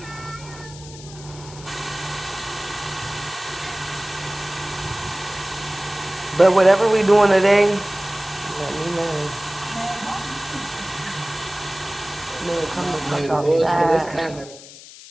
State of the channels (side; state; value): left; noise; hiss, 17 dB below the sound